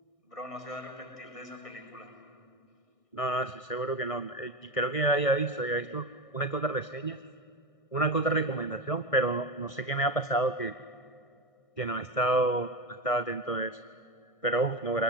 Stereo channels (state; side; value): late; right; 1.6 ms